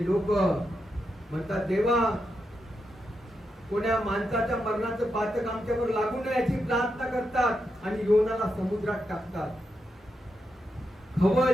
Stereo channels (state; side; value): normal; both; correlation 0.85